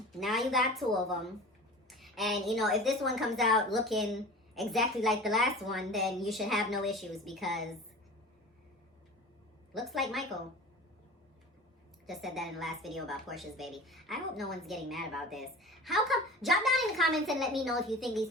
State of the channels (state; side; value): normal; both; correlation 0.38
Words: Now you got 2 of them. And, you know, if this one comes out looking exactly like the last one, then you should have no issues because looks like Michael. Just said that in the last video about Portia's baby. I hope no one's getting mad about this. How come? Drop down in the comments and let me know if you think these